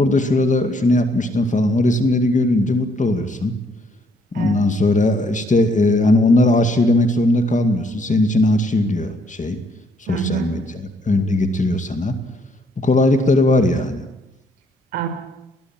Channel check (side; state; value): both; normal; correlation 0.68